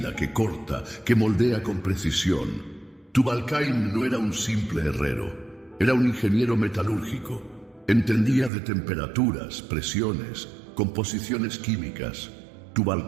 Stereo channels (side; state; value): left; drops out; at 8.5 s